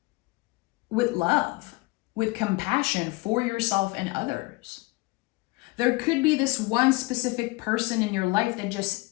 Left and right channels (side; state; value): right; quieter; 23.0 dB